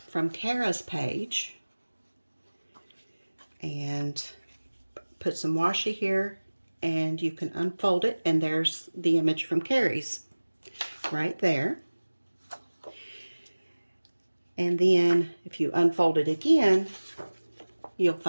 from Cara's page and put some washi here, and you can unfold it, and there's the image from Carrie's right there. And then if you unfold it again, you'll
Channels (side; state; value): both; inverted; correlation -1.00